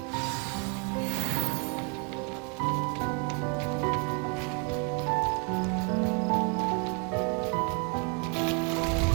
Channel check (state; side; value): quieter; left; 36.3 dB